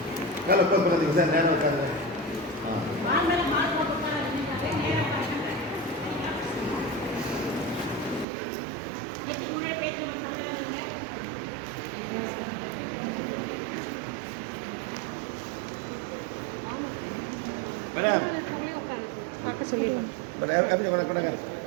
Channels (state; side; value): drops out; left; at 8.2 s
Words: காலை க்ளோஸ் பண்ணாதீங்க சார். நேரம் உட்காந்து சொல்லிடலாம்.